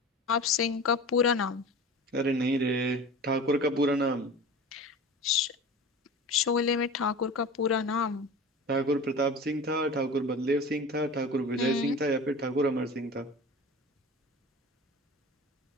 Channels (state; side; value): normal; both; correlation 0.35